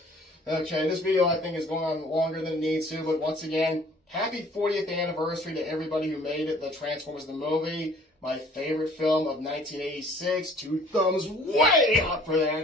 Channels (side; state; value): both; normal; correlation 0.54